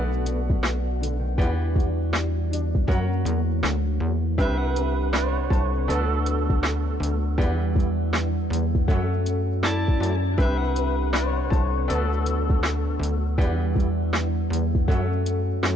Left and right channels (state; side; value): normal; both; correlation 0.77